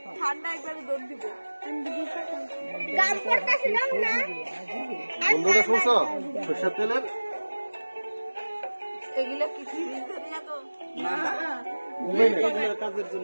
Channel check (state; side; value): inverted; both; correlation -1.00